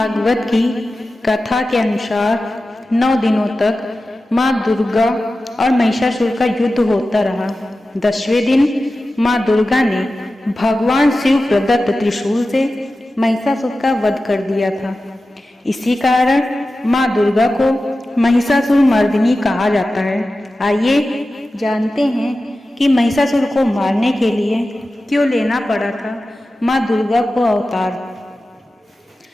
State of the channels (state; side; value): normal; both; correlation 0.94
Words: की कथा के अनुसार 9 दिनों तक माँ दुर्गा और महिषासुर का युद्ध होता रहा। 10वें दिन माँ दुर्गा ने भगवान शिव प्रदत्त त्रिशूल से महिषासुर का वध कर दिया था। इसी कारण माँ दुर्गा को महिषासुर मर्दिनी कहा जाता है। आइए जानते हैं कि महिषासुर को मारने के लिए क्यों लेना पड़ा था माँ दुर्गा को अवतार।